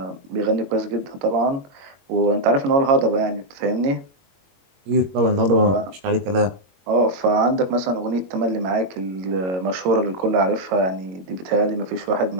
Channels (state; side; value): late; left; 22 ms